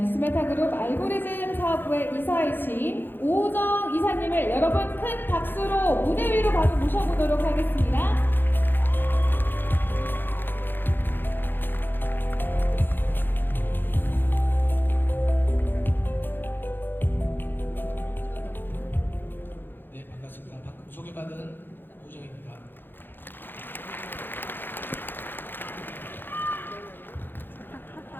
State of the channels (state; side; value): late; right; 0.098 ms